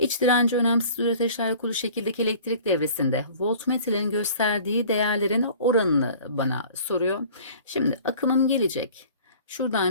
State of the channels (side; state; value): both; inverted; correlation -0.47